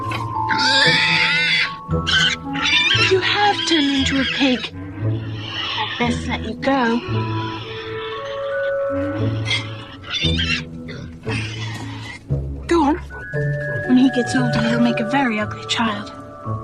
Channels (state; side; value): identical; both; correlation 1.00